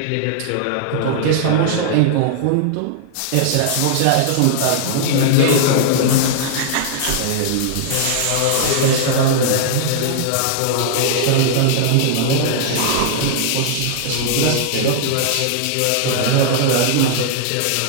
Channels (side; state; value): both; different; correlation -0.01